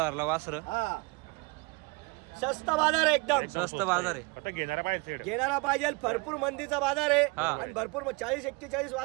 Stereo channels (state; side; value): quieter; left; 27.5 dB